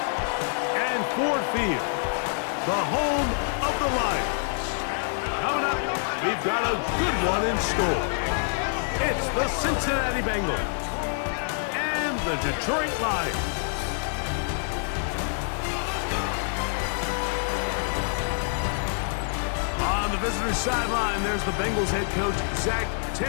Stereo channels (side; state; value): right; silent; digital silence